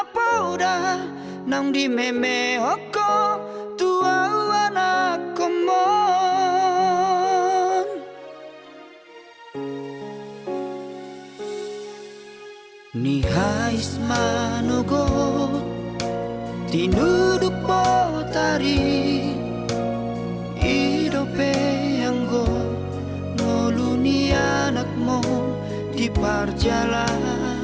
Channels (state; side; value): identical; both; correlation 1.00